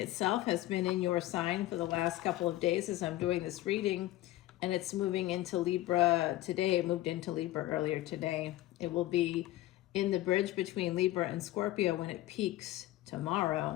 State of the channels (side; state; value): right; quieter; 16.0 dB